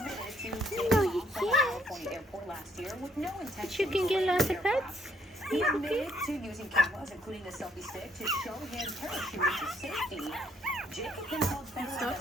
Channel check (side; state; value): both; normal; correlation 0.68